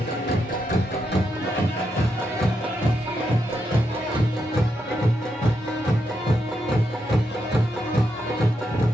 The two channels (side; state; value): both; normal; correlation 0.82